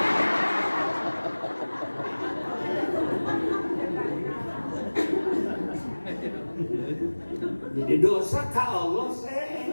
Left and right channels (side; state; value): both; inverted; correlation -1.00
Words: Jadi dosa ke Allah